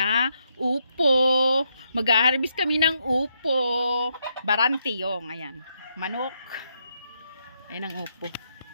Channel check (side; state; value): both; inverted; correlation -0.79